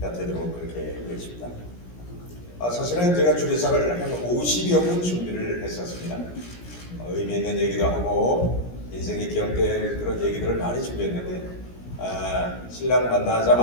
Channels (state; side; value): late; right; 17 ms